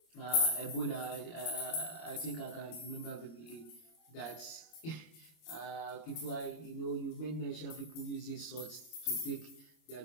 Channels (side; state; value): right; late; 25 ms